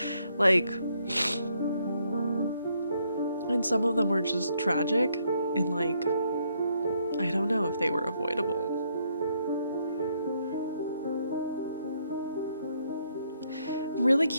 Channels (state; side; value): inverted; both; correlation -0.73